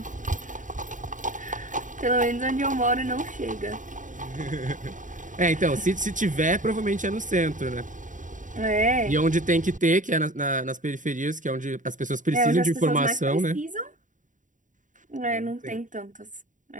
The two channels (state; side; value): late; left; 0.37 ms